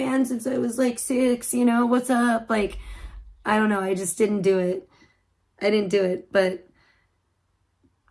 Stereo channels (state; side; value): identical; both; correlation 1.00